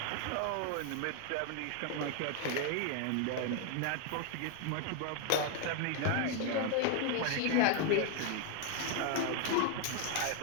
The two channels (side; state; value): both; different; correlation 0.01